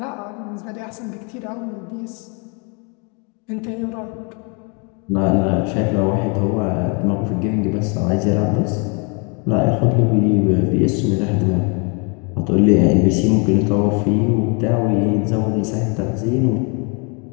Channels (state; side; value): quieter; right; 34.6 dB